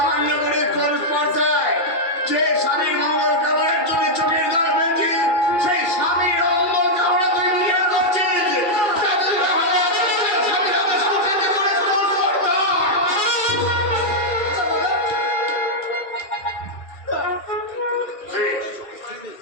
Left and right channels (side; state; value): right; late; 2.4 ms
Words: করে কোন স্পর্ধায় যে স্বামীর মঙ্গল কামনার জন্য চোখের জল ফেলছে সেই স্বামীর অমঙ্গল কামনা তুই নিজের করছিস। তাদের হবে স্বামীর আদেশ করতে করে কোন স্পর্ধা।